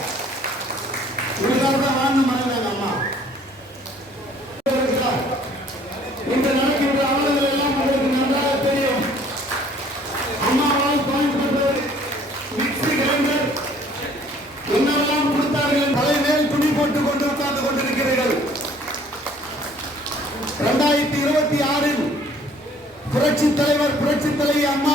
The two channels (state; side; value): normal; both; correlation 0.57